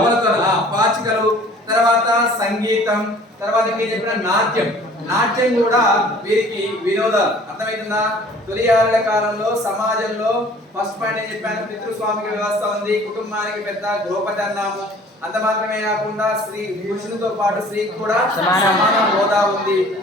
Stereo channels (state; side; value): normal; both; correlation 0.51